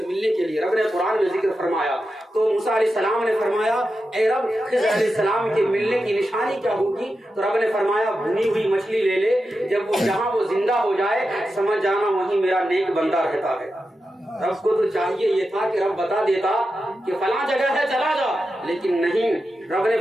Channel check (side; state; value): both; normal; correlation 0.90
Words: ملنے کے لیے۔ رب نے قرآن میں ذکر فرمایا تو موسیٰ علیہ السلام نے فرمایا اے رب خضر علیہ السلام کے ملنے کی نشانی کیا ہوگی؟ تو رب نے فرمایا بھنی ہوئی مچھلی لے لے، جب وہ جہاں وہ زندہ ہو جائے سمجھ جانا وہیں میرا نیک بندہ رہتا ہے۔ رب کو تو چاہیے یہ تھا کہ رب بتا دیتا کہ فلاں جگہ ہے چلا جا، لیکن نہیں، رب نے